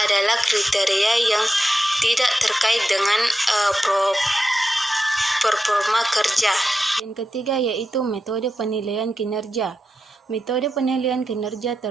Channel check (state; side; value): normal; both; correlation 0.90